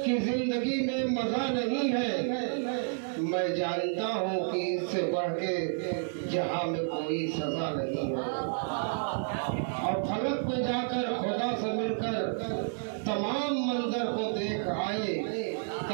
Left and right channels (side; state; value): left; silent; digital silence